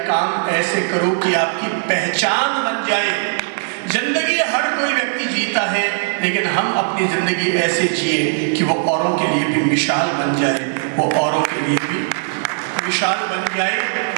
काम ऐसे करो कि आपकी पहचान बन जाए। जिंदगी हर कोई व्यक्ति जीता है, लेकिन हम अपनी जिंदगी ऐसे जिए कि वो औरों के लिए भी मिसाल बन जाए, वो औरों के लिए भी मिसाल बन जाए।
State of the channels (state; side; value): silent; left; 67 dB below the other